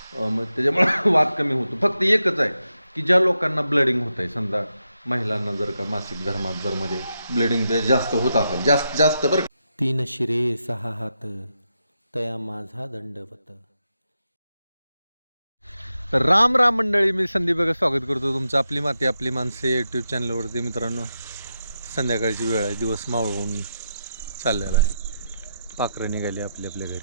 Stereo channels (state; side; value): inverted; both; correlation -0.85